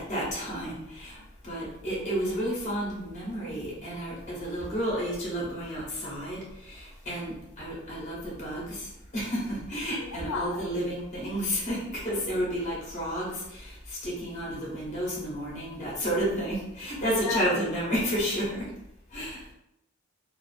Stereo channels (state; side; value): normal; both; correlation 0.38